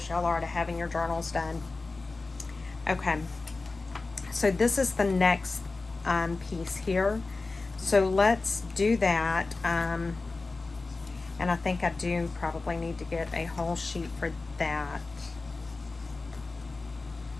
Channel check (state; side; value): quieter; right; 3.6 dB